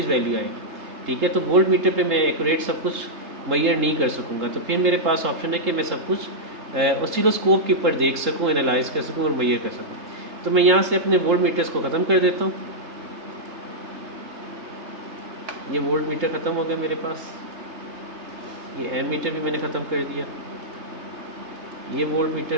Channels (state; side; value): late; left; 3.7 ms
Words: वैल्यू आएगी, ठीक है। तो वोल्ट मीटर पे मैं एक्यूरेट सब कुछ मैयर नहीं कर सकूँगा, तो फिर मेरे पास ऑप्शन है कि मैं सब कुछ ऑसिलोस्कोप के ऊपर देख सकूँ, एनालाइज कर सकूँ और मैयर कर सकूँ। तो मैं यहाँ से अपने वोल्ट मीटर्स को ख़त्म कर देता हूँ। ये वोल्ट मीटर ख़त्म हो गया मेरे पास, ये एम मीटर भी मैंने ख़त्म कर दिया, ये वोल्ट मीटर